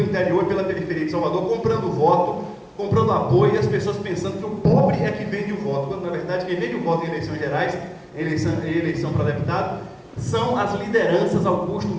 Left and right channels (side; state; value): both; identical; correlation 1.00